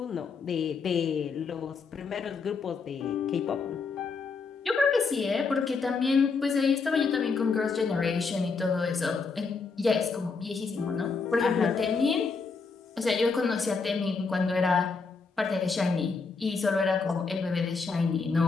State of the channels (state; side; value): quieter; right; 4.7 dB